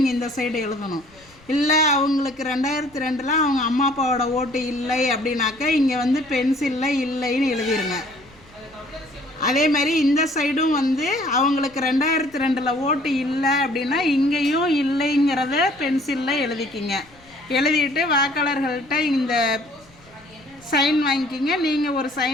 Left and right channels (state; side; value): noise; left; rumble, 28 dB below the sound